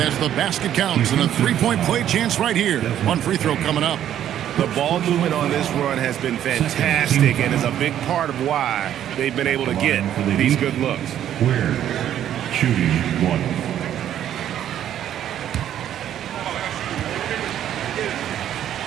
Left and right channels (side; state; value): left; quieter; 10.9 dB